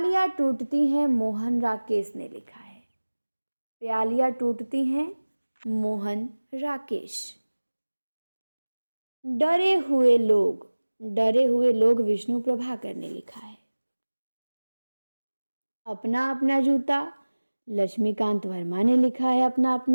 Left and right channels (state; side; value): inverted; both; correlation -1.00